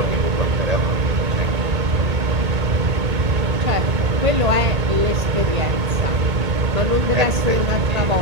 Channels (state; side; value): late; left; 2.2 ms